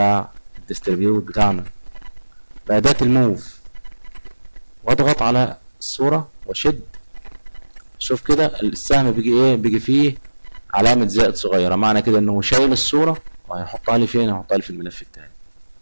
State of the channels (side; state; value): both; inverted; correlation -1.00